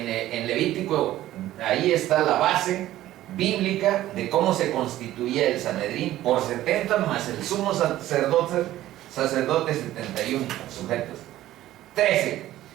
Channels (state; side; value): quieter; left; 14.3 dB